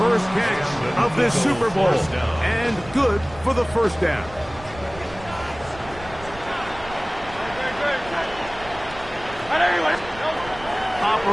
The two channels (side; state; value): right; noise; rumble, 17 dB below the sound